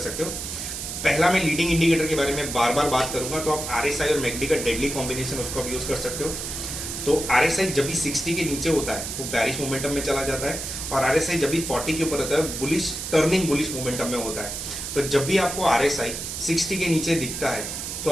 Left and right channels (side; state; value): right; noise; hiss, 6 dB below the sound